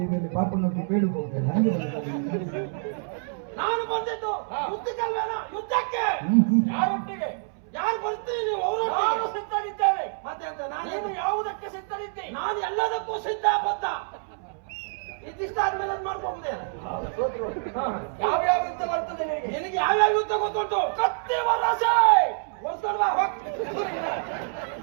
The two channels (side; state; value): left; silent; 60 dB below the other